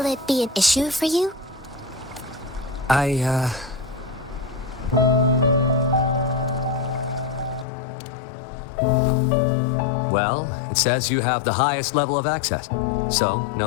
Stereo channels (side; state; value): right; drops out; at 7.7 s